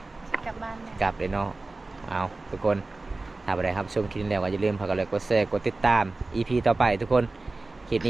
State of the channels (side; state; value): left; quieter; 3.3 dB